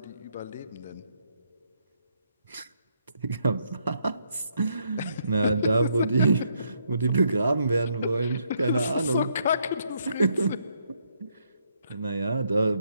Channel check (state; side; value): inverted; both; correlation -0.74